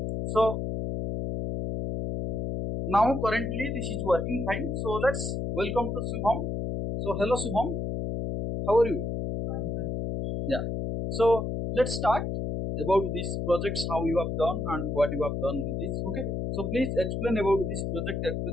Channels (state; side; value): noise; left; hum, 2 dB below the sound